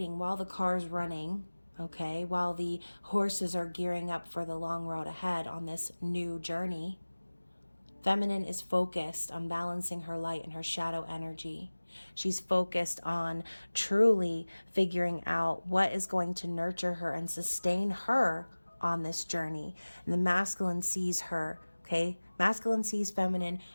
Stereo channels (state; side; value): inverted; both; correlation -1.00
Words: while the car's running, okay, while the horses are gearing up for the long road ahead on this new journey, feminine is focused on balancing her light and her shadow energy. She's focused on truly figuring out what is going to nurture her and sustain her on this journey. And the masculine sees her, okay? Masculine sees feminine